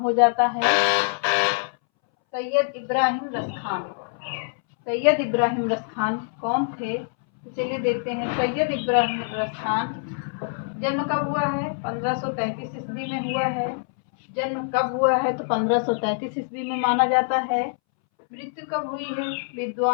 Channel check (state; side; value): silent; right; 62 dB below the other